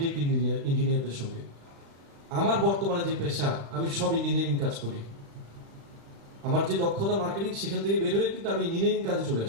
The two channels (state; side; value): late; left; 35 ms